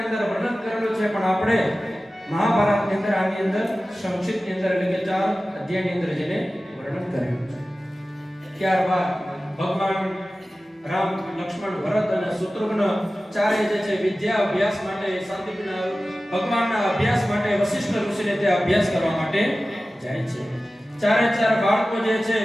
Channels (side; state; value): both; normal; correlation 0.96